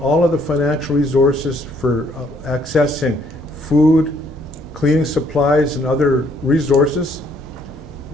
all of the financial resources for accessing food, cleaning supplies, and other resources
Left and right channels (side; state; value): both; normal; correlation 0.66